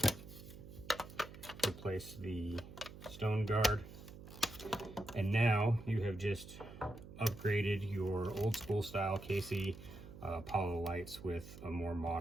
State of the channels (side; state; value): right; noise; hum, 15 dB below the sound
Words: Replace the stone guard. And now you have just upgraded your old school style KC Apollo lights with a more